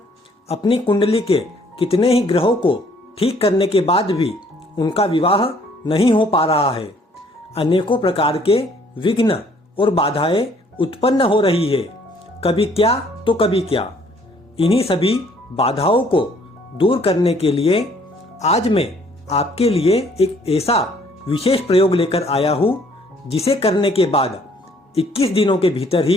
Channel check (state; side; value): normal; both; correlation 0.61